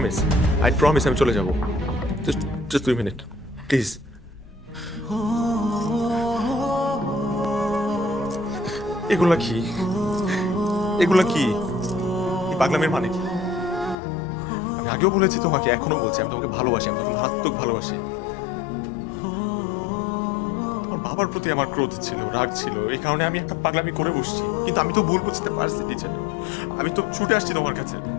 promise আমি চলে যাব, জাস্ট 2 মিনিট প্লিজ। এগুলা কি এই পাগলামের মানে কি? আমি আগেও বলেছি তোমাকে, এখনো বলছি, আমি তোমাকে ভালোবাসি, আমি তোমাকে মারাত্মক ভালোবাসি। তোমার বাবার প্রতি আমার ক্রোধ ছিল, রাগ ছিল, এই কারণে আমি একটা পাগলামি করে বসছি, কিন্তু আমি তো ভুল বুঝতে পারছি টিচার। আমি তো ছুটে আসছি তোমার কাছে,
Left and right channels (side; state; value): right; drops out; at 14.0 s